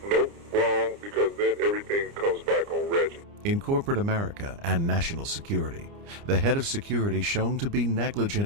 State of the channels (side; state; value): left; late; 29 ms